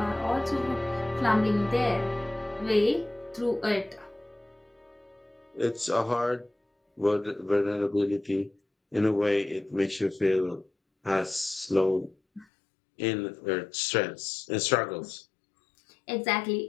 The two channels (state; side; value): drops out; right; at 12.5 s